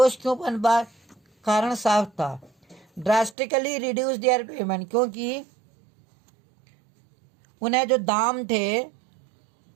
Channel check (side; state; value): left; drops out; at 3.4 s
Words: क्यों पनपा? कारण साफ था, ड्रास्टिकली रिड्यूस देयर पेमेंट, क्योंकि उन्हें जो दाम थे,